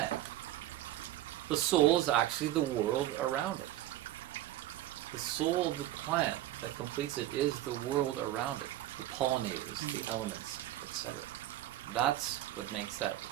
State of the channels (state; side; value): quieter; left; 14.2 dB